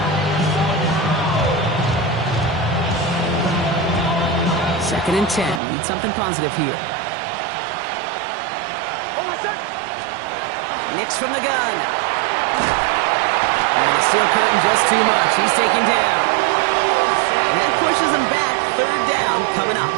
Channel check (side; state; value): left; drops out; at 5.6 s